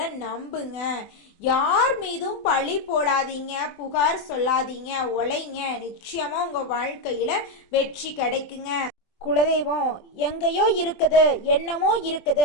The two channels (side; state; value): right; late; 24 ms